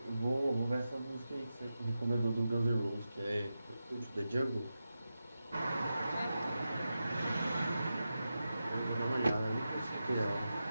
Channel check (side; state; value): both; inverted; correlation -0.91